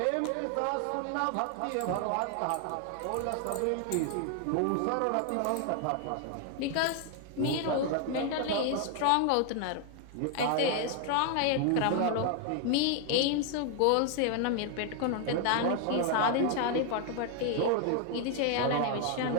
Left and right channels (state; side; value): different; both; correlation 0.00